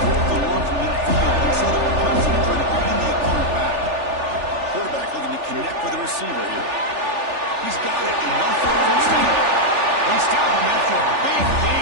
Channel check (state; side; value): late; left; 3.4 ms